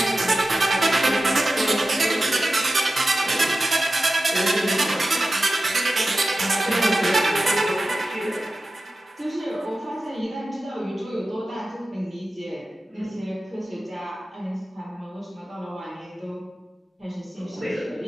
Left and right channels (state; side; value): normal; both; correlation 0.94